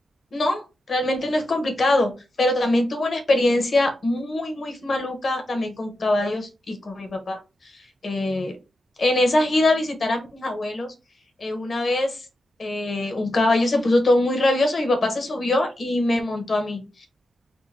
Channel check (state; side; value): normal; both; correlation 0.88